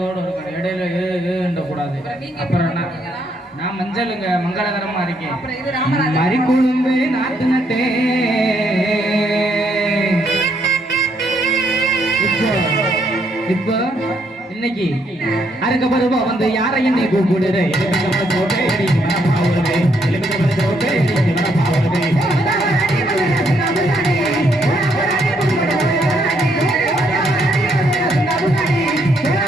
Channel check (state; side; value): normal; both; correlation 0.73